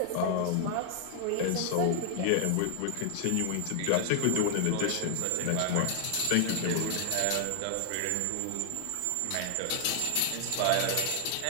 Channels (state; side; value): different; both; correlation 0.00